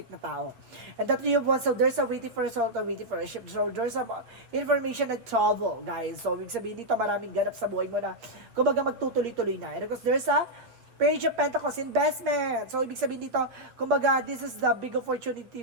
na tao. And that Three of Wands, so there's a waiting for a soul or waiting for a ship. So there's a information na trouble, guys. So ibig sabihin dito maraming ganap sa buhay mo na kumbaga magtutuloy-tuloy na. And because there's a Page of Pentacles, investment. So, ibig sabihin dito, kumbaga, this is the big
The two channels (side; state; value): left; late; 7.9 ms